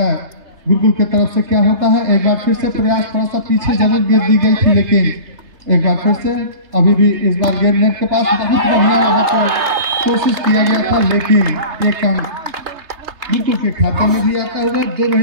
गुरुकुल की तरफ से क्या होता है। एक बार फिर से प्रयास, थोड़ा सा पीछे जरूर गेंद दी गई थी, लेकिन एक बार फिर से अभी भी इस बार गेंद नेट के पास बहुत बढ़िया वहाँ पर कोशिश किया गया था, लेकिन एक अंक गुरुकुल के खाते में भी आता हुआ। दोनों ही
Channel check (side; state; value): left; late; 3.3 ms